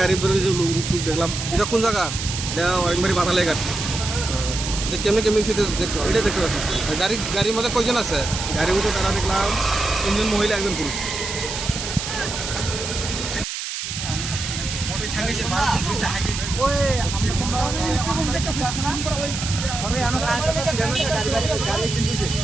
গাড়ির উপরে যে লোক দেখলাম এটা কোন জায়গা এটা একবারে বাতালে ঘাট এটা কেমনি কেমনি সেটা দেখছো এটা দেখতে পাচ্ছি গাড়ির মধ্যে কয়জন আছে গাড়ির মধ্যে তারা দেখলাম 3 জন মহিলা 1 জন পুরুষ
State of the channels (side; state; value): right; noise; hiss, 5 dB below the sound